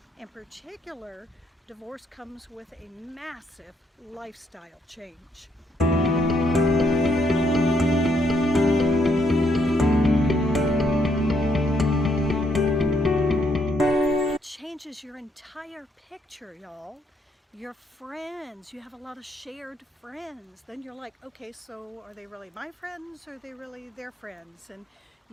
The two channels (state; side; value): normal; both; correlation 0.73